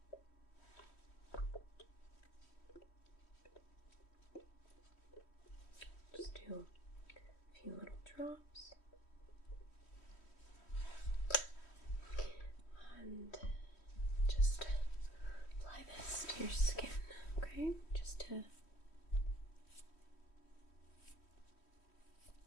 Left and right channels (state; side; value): late; right; 3.1 ms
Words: Just do a few little drops. And just apply this to your skin, okay? Just to